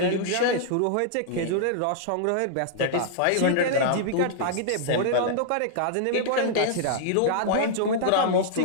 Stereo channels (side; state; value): both; different; correlation -0.01